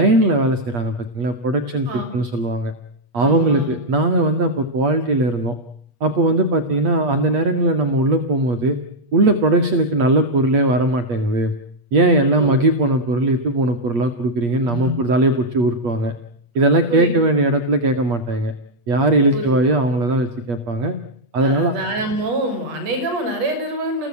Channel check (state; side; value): late; left; 8.4 ms